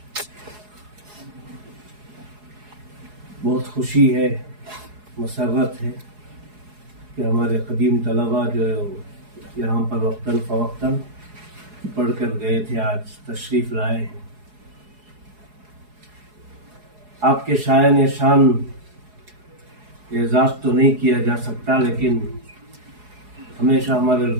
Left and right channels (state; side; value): late; left; 4.8 ms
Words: بہت خوشی ہے، مسرت ہے کہ ہمارے قدیم طلباء جو یہاں پر وقتاً فوقتاً پڑھ کر گئے تھے آج تشریف لائے ہیں. آپ کے شایان شان اعزاز تو نہیں کیا جا سکتا، لیکن ہمیشہ ہمارے